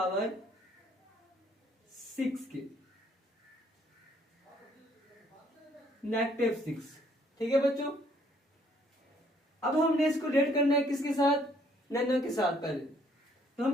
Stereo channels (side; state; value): both; normal; correlation 0.65